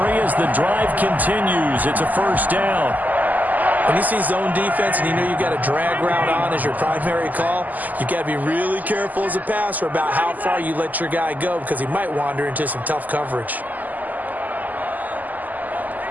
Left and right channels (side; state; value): left; late; 0.081 ms